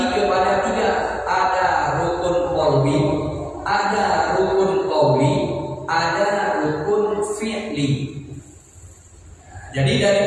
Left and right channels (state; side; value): identical; both; correlation 1.00